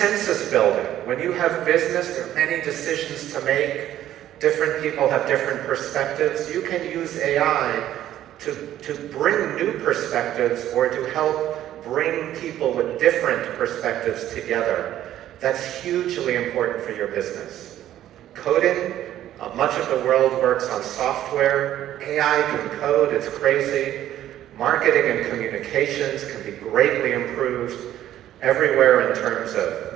building. When you have business, there are many decisions to make. Different people have different perspectives. You can use AI to bring new perspectives or to help bring people with different perspectives together. That's hugely important for your business. Coding, much of the world works on software. AI can code, it's crazy. Marketing and communications can be greatly improved everywhere in terms of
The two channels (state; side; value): quieter; left; 12.4 dB